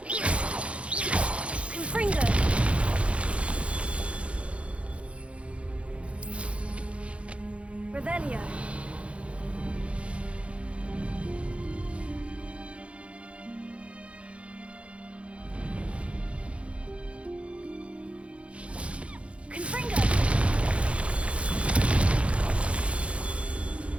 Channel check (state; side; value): late; left; 0.061 ms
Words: Confringo! Revelio. Confringo!